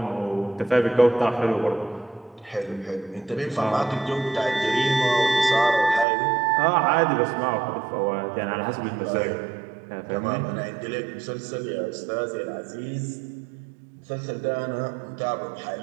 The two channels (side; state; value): left; drops out; at 6.1 s